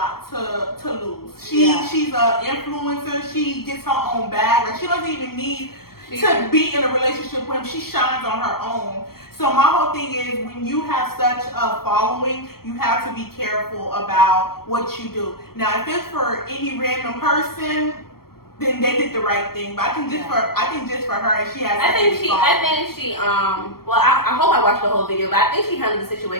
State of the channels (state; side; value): late; right; 0.94 ms